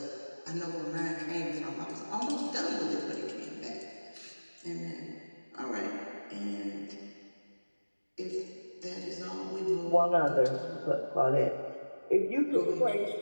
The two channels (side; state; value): both; inverted; correlation -1.00